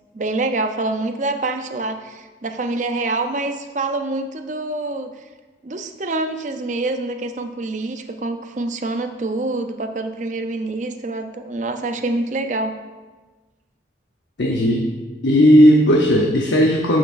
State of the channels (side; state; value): both; normal; correlation 0.55